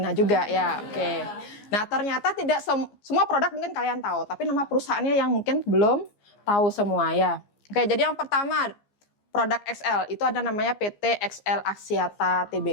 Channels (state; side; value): late; right; 15 ms